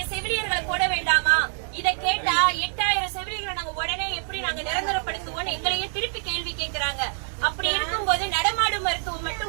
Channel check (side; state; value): left; silent; 59 dB below the other